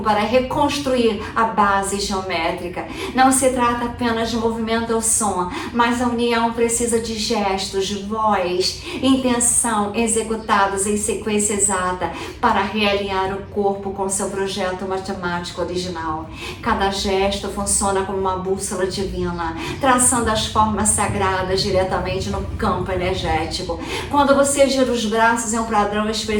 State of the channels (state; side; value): identical; both; correlation 1.00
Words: para reconstruir a base geométrica. Não se trata apenas de movimento ou som, mas a união precisa de gestos, voz, intenção executados em sequência exata para realinhar o corpo com seu projeto matemático original. Cada gesto funciona como uma bússola divina, traçando as formas sagradas diretamente no campo energético. Quando você gira os braços em um padrão